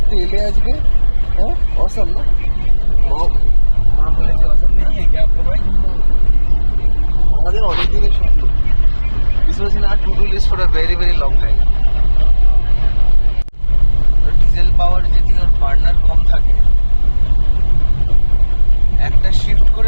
এলে আজকে, হ্যাঁ অসম না মা বলেছে অসম নেই কি আপনার ভাই, আমাদের অনেক দিনের স্বপ্ন। This was in our to-do list for a very very long time. Diesel power যদি ওর বার্নার কম থাকে, একটা শিফট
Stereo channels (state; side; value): inverted; both; correlation -1.00